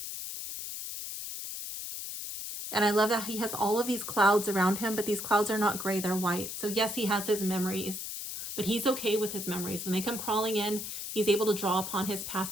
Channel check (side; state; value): left; noise; hiss, 6 dB below the sound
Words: And I love that he has all of these clouds around him, but these clouds are not gray, they're white. So yes, he has his memories, but he's okay with his memories. When they come crawling in, he's able to draw upon his